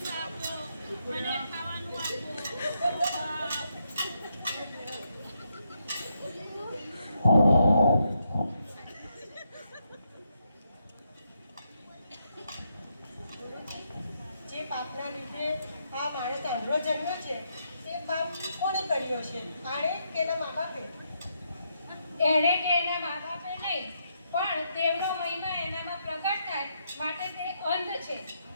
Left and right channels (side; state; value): both; inverted; correlation -0.79